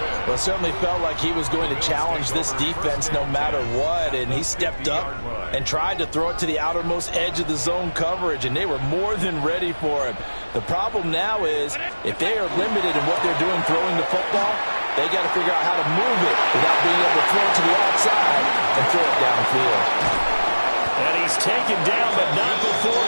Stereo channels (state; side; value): inverted; both; correlation -1.00